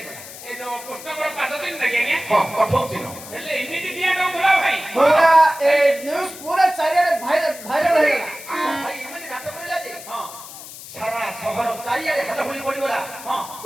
ଏ ଯୋଉ କୃଷ୍ଣଙ୍କର ପାଦ ଚିହ୍ନ ଦେଖି ଆଜ୍ଞା? ହଁ କଠୋର ଚିହ୍ନ। ହେଲେ ଏମିତି ଦିଆ ଡଙ୍ଗୁଲା ଭାଇ। ପୁରା ଏ ନ୍ୟୁଜ ପୁରା ଚାରିଆଡେ ଭାଇରାଲ ହେଇଗଲା ଆମ ଭାଇ ଏମିତି ନାଟ କରିଲା ଯେ ହଁ ସାରା ସହର ଚାରିଆଡେ ହାଲ ହୋଇ ପଡିଗଲା। ହଁ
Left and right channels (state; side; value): noise; left; hiss, 14 dB below the sound